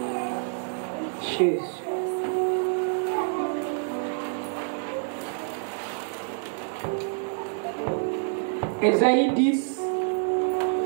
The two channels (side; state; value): left; silent; digital silence